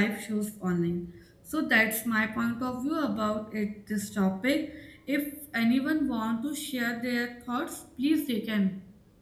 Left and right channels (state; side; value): identical; both; correlation 1.00